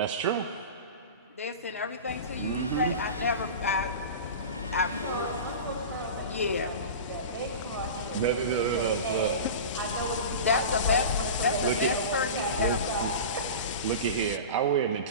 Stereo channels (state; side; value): inverted; both; correlation -0.30